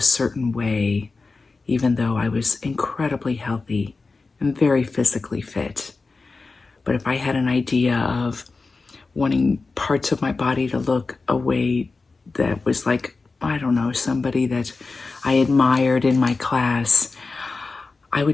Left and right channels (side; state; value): right; quieter; 4.0 dB